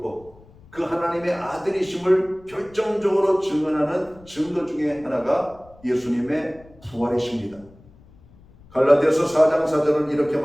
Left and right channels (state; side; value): noise; left; rumble, 25 dB below the sound